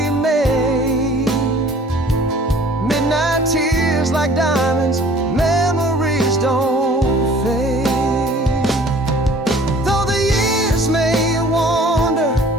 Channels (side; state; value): both; normal; correlation 0.51